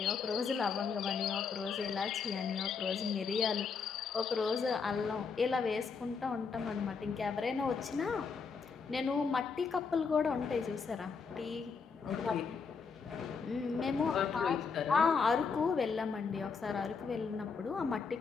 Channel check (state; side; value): quieter; right; 5.4 dB